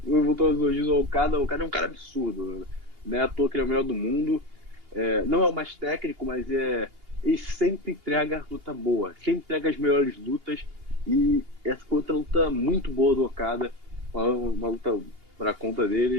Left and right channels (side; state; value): left; late; 2.8 ms